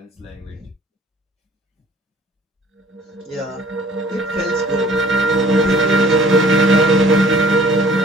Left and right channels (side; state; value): both; normal; correlation 0.52